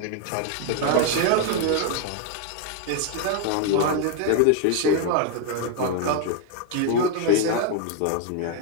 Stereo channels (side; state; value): both; different; correlation 0.01